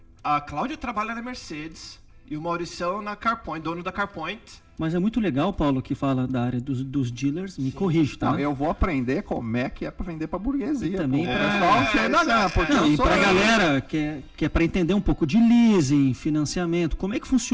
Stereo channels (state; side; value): identical; both; correlation 1.00